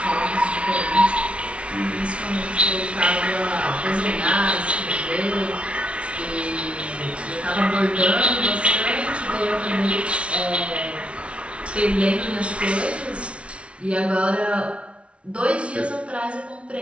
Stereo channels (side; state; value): left; late; 0.061 ms